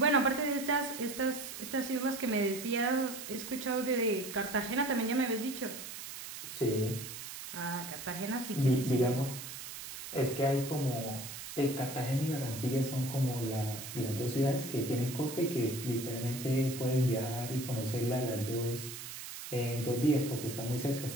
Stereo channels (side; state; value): right; noise; hiss, 9 dB below the sound